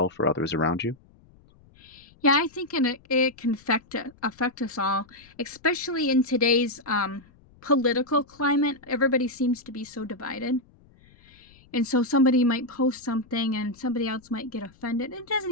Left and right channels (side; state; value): left; noise; rumble, 28 dB below the sound